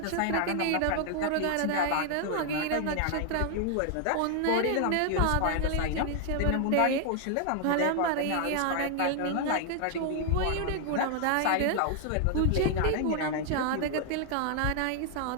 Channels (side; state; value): both; different; correlation 0.00